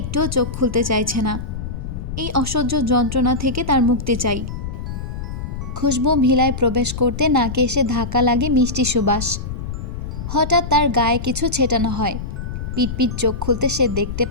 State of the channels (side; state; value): left; noise; rumble, 6 dB below the sound